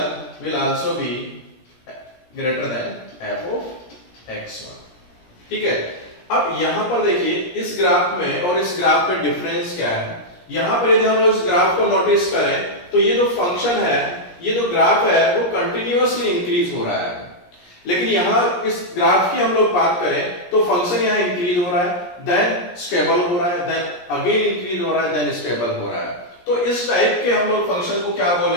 will also be greater than f of x1। ठीक है, अब यहां पर देखिए इस ग्राफ में और इस ग्राफ में डिफरेंस क्या है। यहां पर यदि हम लोग इस ग्राफ को नोटिस करें तो ये जो फंक्शन है, ये जो ग्राफ है वो कंटिन्यूअसली इंक्रीज हो रहा है। लेकिन यहां इस ग्राफ की हम लोग बात करें तो फंक्शन यहां इंक्रीज हो रहा है, देन स्टेबल हो रहा है, देन अगेन इंक्रीज हो रहा है, देन स्टेबल हो रहा है। तो इस टाइप के हम लोग फंक्शन को क्या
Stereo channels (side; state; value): right; late; 17 ms